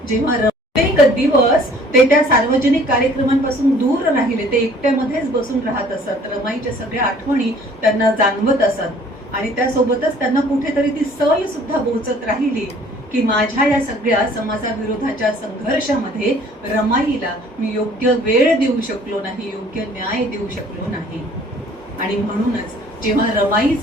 जेव्हा प्रत्येक दिवस ते त्या सार्वजनिक कार्यक्रमांपासून दूर राहिले, ते एकट्यामध्येच बसून राहत असत, रमाईच्या सगळ्या आठवणी त्यांना जाणवत असत आणि त्यासोबतच त्यांना कुठेतरी ती सय सुद्धा बोचत राहिली की माझ्या या सगळ्या समाजाविरोधाच्या संघर्षामध्ये रमाईला मी योग्य वेळ देऊ शकलो नाही, योग्य न्याय देऊ शकलो नाही. आणि म्हणूनच जेव्हा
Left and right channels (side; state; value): both; normal; correlation 0.55